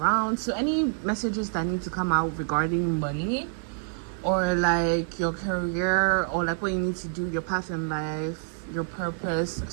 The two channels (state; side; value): silent; left; digital silence